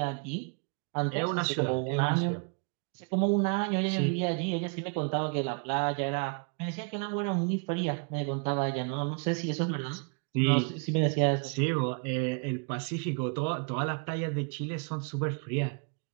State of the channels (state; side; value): quieter; left; 37.4 dB